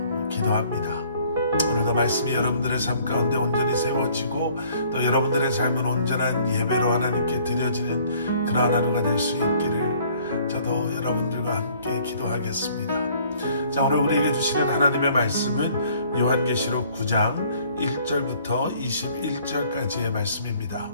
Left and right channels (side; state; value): both; inverted; correlation -0.58